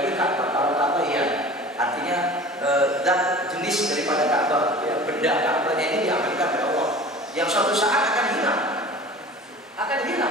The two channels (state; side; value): normal; both; correlation 0.40